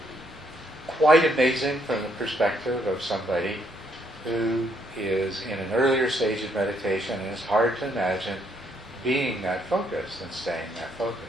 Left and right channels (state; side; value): normal; both; correlation 0.72